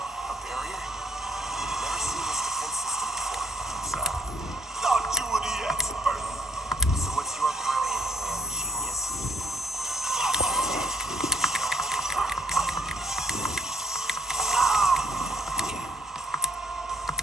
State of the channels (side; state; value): both; normal; correlation 0.65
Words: A barrier? Never seen this defense system before. Thought you were the expert. So what's your brilliant plan, genius?